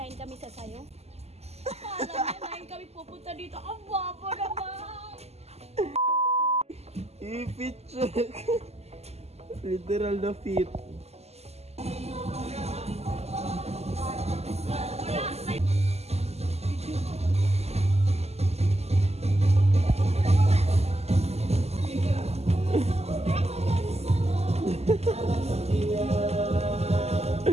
kami sasayo. Akala niya 9 kami pupunta dito. Ang bobo naman! I-fit check. Literal na fit.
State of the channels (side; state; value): left; late; 0.30 ms